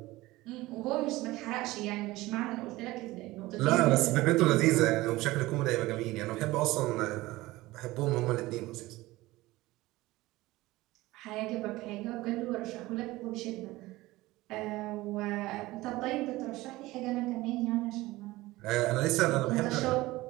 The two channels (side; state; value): left; quieter; 18.9 dB